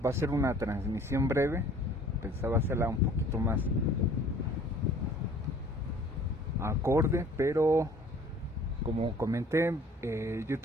Va a ser una transmisión breve, pensaba hacerla un poquito más acorde, pero como comenté,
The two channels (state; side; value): normal; both; correlation 0.52